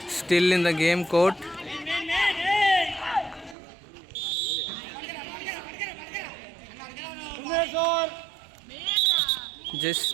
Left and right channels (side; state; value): left; drops out; at 3.6 s